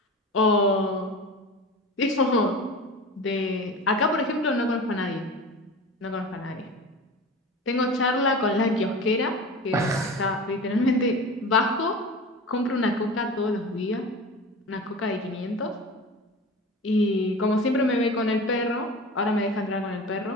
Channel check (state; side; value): normal; both; correlation 0.33